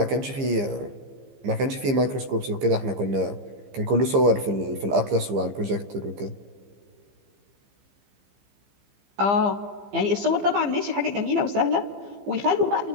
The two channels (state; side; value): late; left; 15 ms